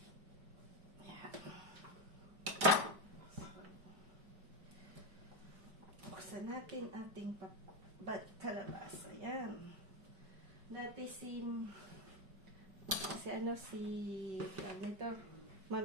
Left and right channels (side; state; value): left; late; 5.0 ms